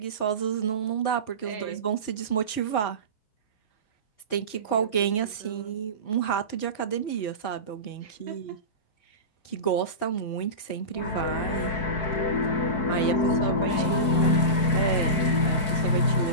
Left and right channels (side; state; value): right; late; 4.7 ms